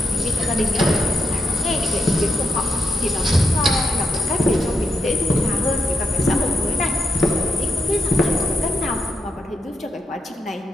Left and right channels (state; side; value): normal; both; correlation 0.83